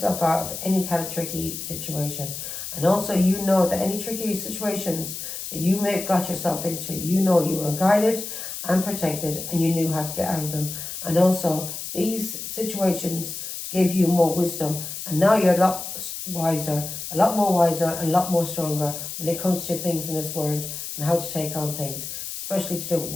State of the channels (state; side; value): noise; left; hiss, 7 dB below the sound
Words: out of any kind of tricky situation. And also, you know that any tricky situations that you may have got yourself into, you know you were guided and protected, and you knew how to get out of them. And also, these situations gave you more wisdom, and now you're a lot wiser, a lot more wiser, and a lot more stronger when it comes to things in this world and how to take on things, especially to do with